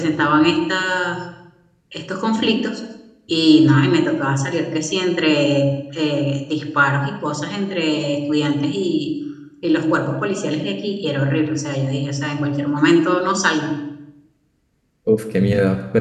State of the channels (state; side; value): identical; both; correlation 1.00